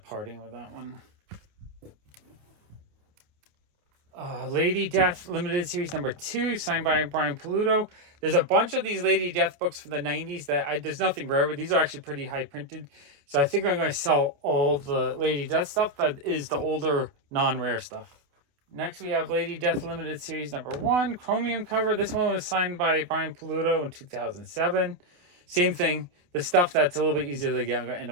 parting with that one. Lady Death Limited Series #2, signed by Brian Paluto. There's a bunch of these Lady Death books from the 90s that there's nothing rare, but these are actually pretty high printed. So I think I'm going to sell all the Lady Death stuff that is the older non-rare stuff. Next we have Lady Death Limited Series #1, chromium cover. This one was signed by Brian Paluto in 2007. Same thing. The stuff that's a little bit easier to get, I'm going to end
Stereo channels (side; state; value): left; late; 28 ms